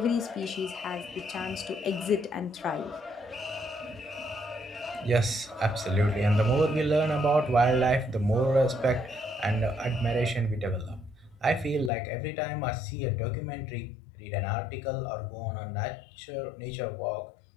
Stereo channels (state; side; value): drops out; right; at 11.9 s